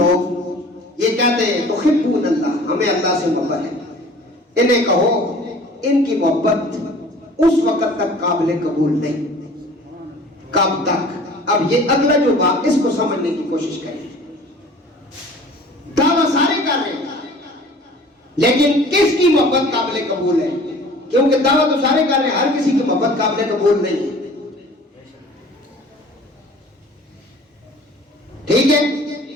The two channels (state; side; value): normal; both; correlation 0.47